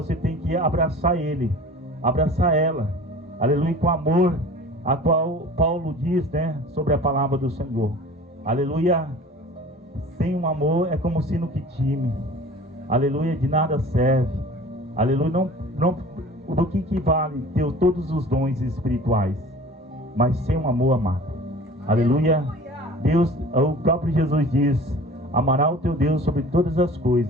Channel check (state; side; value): normal; both; correlation 0.42